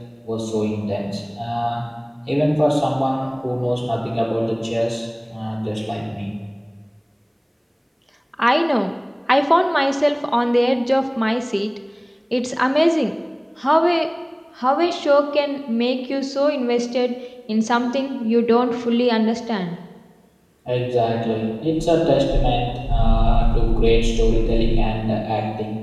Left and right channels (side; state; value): both; identical; correlation 1.00